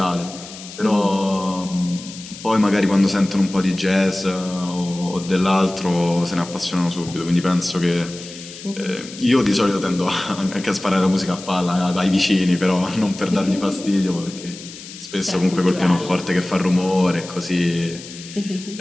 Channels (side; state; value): left; noise; hiss, 15 dB below the sound